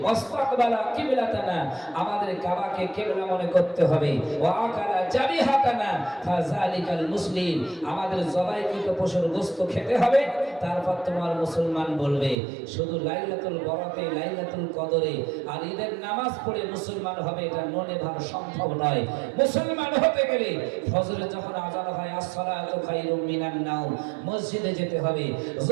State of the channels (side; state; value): left; drops out; at 12.4 s